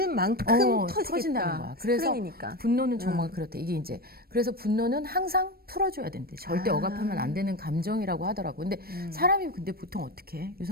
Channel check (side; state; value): left; late; 0.44 ms